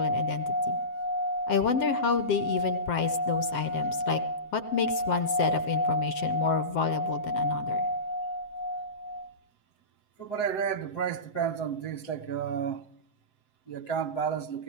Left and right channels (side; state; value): right; late; 7.7 ms